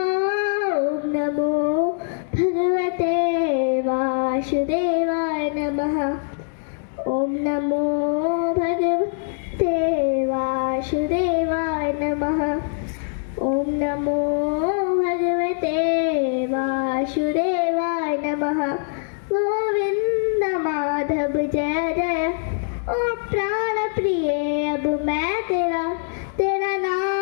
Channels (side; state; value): right; silent; digital silence